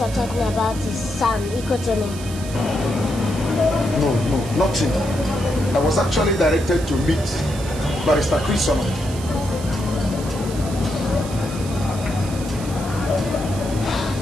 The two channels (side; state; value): right; noise; hiss, 14 dB below the sound